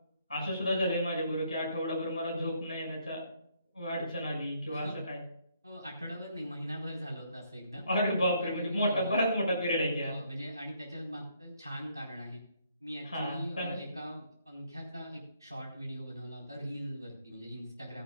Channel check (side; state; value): both; inverted; correlation -0.70